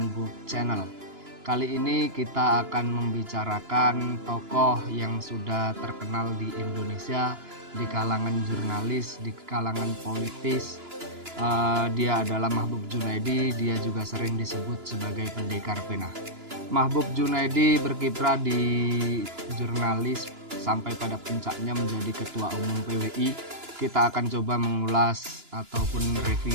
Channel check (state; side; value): late; left; 2.9 ms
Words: Book Channel. Kali ini kita akan membicarakan tokoh yang sudah terkenal di Indonesia, di kalangan jurnalis, di kalangan politis. Dia adalah Mahbub Junaidi. Dia juga sering disebut sebagai pendekar pena. Mahbub Junaidi berkiprah di jurnalis sampai pada puncaknya menjadi Ketua Umum PWI. Kita akan coba mengulas ataupun